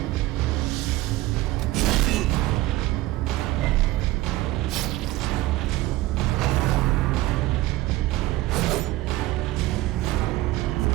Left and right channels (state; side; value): quieter; left; 17.7 dB